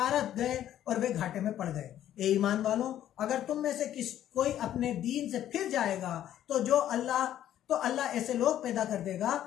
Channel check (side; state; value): right; quieter; 11.6 dB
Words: गए और वे घाटे में पड़ गए। ए ईमान वालों, अगर तुम में से कोई अपने दीन से फिर जाएगा तो अल्लाह ऐसे लोग पैदा कर देगा